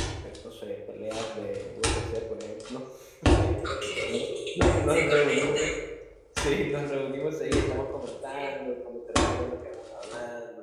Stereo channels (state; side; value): identical; both; correlation 1.00